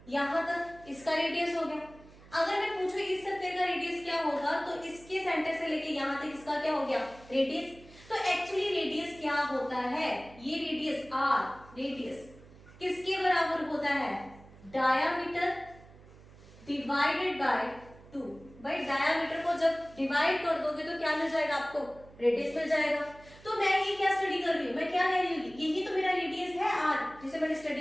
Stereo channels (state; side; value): noise; right; hum, 22 dB below the sound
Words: यहाँ तक इसका रेडियस हो गया। अगर मैं पूछूं इस स्फीयर का रेडियस क्या होगा, तो इसके सेंटर से लेके यहाँ तक इसका क्या हो गया? रेडियस। तो एक्चुअली रेडियस क्या होता है? ये रेडियस आर, रेडियस किसके बराबर होता है? Diameter divided by 2। भाई डायामीटर को जब डिवाइड कर दोगे तो क्या मिल जाएगा आपको? रेडियस मिल जाएगा। तो मैं ये क्या स्टडी कर रही हूँ? मैं क्या कह रही हूँ? यही तो मेरा रेडियस है आर, जिसे मैंने